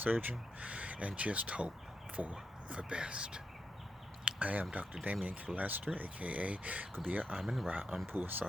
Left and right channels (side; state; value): both; normal; correlation 0.84